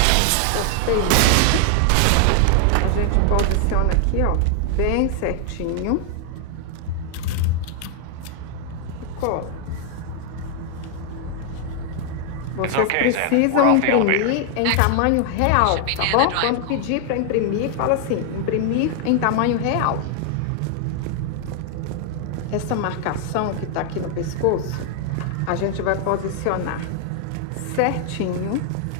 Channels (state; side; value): different; both; correlation 0.00